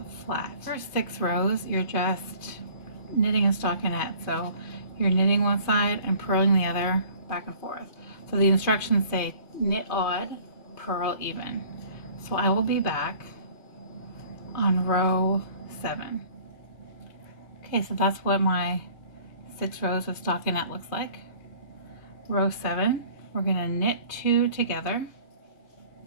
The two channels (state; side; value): late; right; 2.5 ms